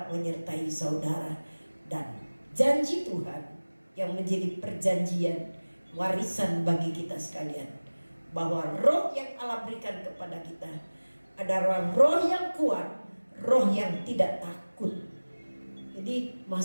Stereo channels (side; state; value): both; inverted; correlation -1.00